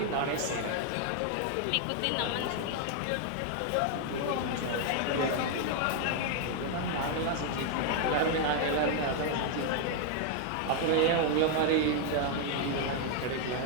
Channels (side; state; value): both; different; correlation 0.00